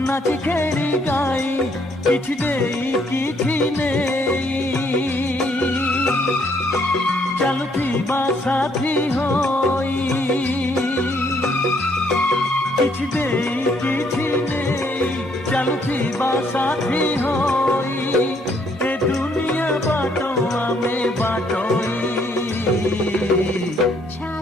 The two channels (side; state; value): both; normal; correlation 0.68